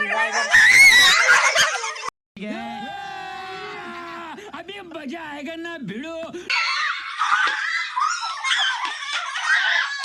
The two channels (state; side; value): identical; both; correlation 1.00